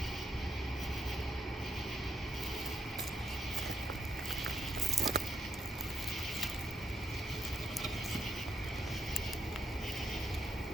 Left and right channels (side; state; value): both; normal; correlation 0.79